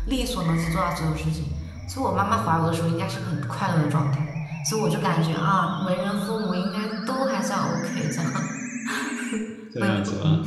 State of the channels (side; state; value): both; identical; correlation 1.00